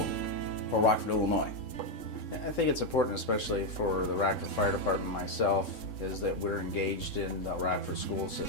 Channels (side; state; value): right; late; 3.7 ms